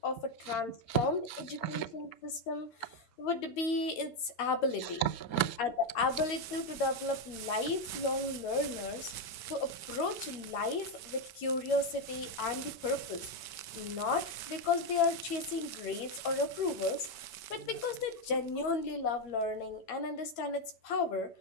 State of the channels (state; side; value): late; right; 8.9 ms